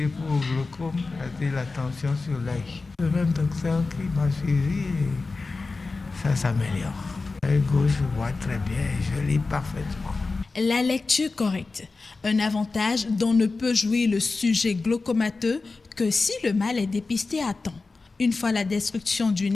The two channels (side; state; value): right; quieter; 3.8 dB